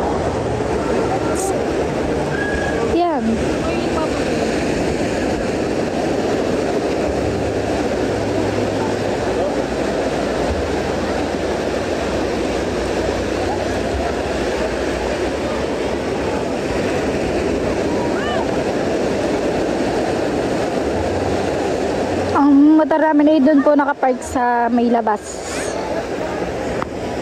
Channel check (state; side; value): identical; both; correlation 1.00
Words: Motor namin ay doon po nakapark sa may labas.